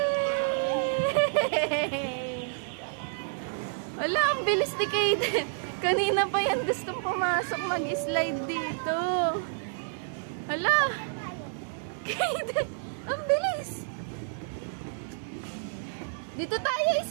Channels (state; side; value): silent; left; 58 dB below the other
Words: Wala, ang bilis ni Kaiden. Kanina pa yan gustong pumasok mag-slide dito. Hala! Kaiden! Ang bilis! Dito tayo